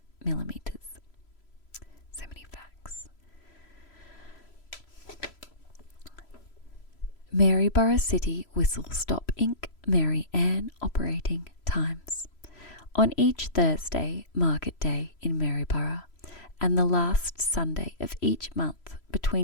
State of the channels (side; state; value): right; late; 3.0 ms